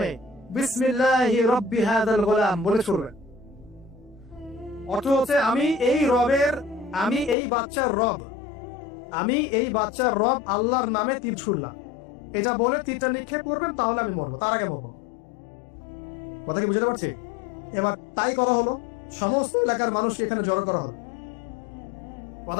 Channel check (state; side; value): drops out; right; at 7.4 s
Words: বিসমিল্লাহি রাব্বি হাযাল গোলাম বলে ছুড়বেন। অর্থ হচ্ছে আমি এই রবের, আমি এই বাচ্চার রব, আমি এই বাচ্চার রব আল্লাহর নামে তীর ছুড়লাম, এটা বলে তীরটা নিক্ষেপ করবেন, তাহলে আমি মরবো, তার আগে মরবো। কথা কি বুঝতে পারছি? এবার তাই করা হলো, সমস্ত এলাকার মানুষ এখানে জড়ো করা হলো।